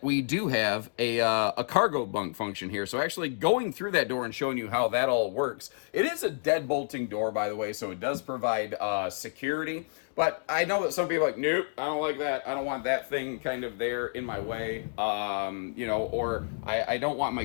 we do have a cargo bunk function here. So actually going through that door and showing you how that all works. It is a dead bolting door, by the way, so it does provide security. But I know that some people are like, nope, I don't like that. I don't want that thing kind of there in my way. Or I don't want my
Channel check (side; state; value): right; silent; digital silence